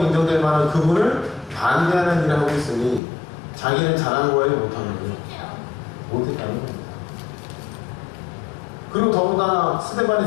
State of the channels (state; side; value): drops out; right; at 3.0 s